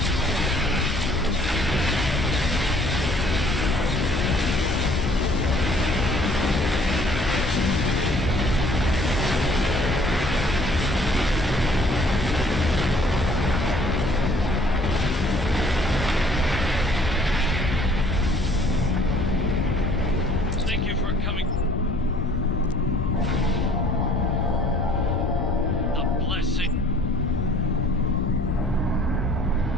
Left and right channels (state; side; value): normal; both; correlation 0.57